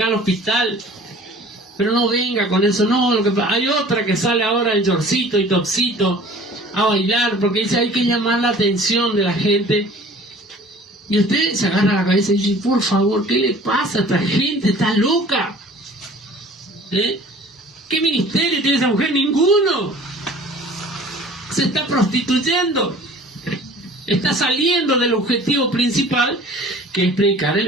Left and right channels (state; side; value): normal; both; correlation 0.48